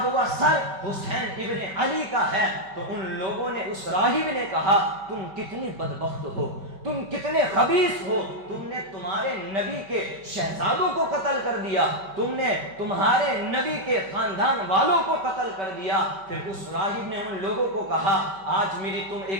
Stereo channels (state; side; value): late; left; 5.2 ms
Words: ہوا سر حسین ابن علی کا ہے۔ تو ان لوگوں نے، اس راہب نے کہا تم کتنی بدبخت ہو، تم کتنے خبیث ہو، تم نے تمہارے نبی کے شہزادوں کو قتل کر دیا، تم نے تمہارے نبی کے خاندان والوں کو قتل کر دیا۔ پھر اس راہب نے ان لوگوں کو کہا آج میری تم